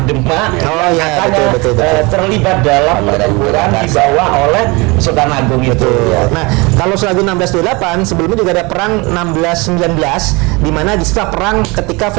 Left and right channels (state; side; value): quieter; left; 26.1 dB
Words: Demak, Oh, iya, katanya betul. terlibat dalam pertempuran dibawa oleh Sultan Agung itu. Betul. Nah, kalau Sultan Agung 1628 sebelumnya juga ada perang 1619 di mana di setelah perang ketika